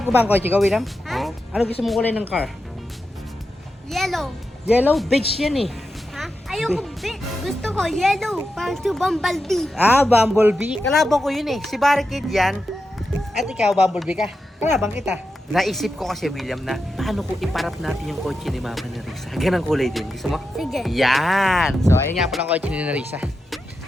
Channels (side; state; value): both; normal; correlation 0.89